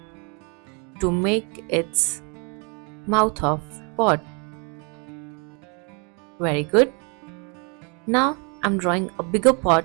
to make its mouth of pot. Very good. Now I am drawing a bigger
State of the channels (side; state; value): left; quieter; 35.2 dB